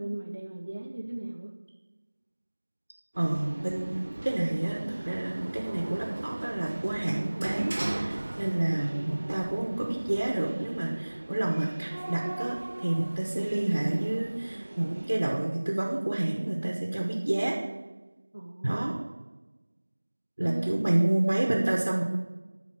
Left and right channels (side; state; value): both; inverted; correlation -1.00